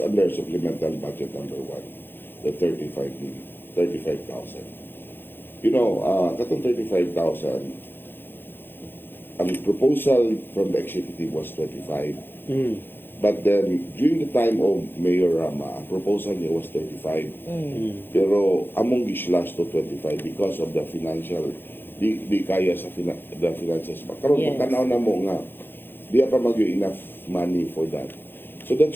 under supplemental budget number 1, the 35,000. You know, katong 35,000, ang proposal from the executive was 25. But then, during the time of Mayor Rama, ang proposal niya was 35. Pero among gi-slash to 25 because of the financial, di kaya sa the finances. Karon pagtanaw na mo nga, di pa mag enough money for that. So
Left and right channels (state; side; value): late; right; 0.10 ms